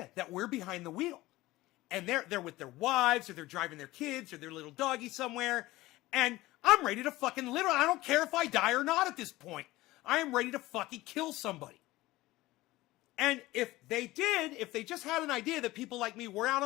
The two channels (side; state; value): right; quieter; 18.3 dB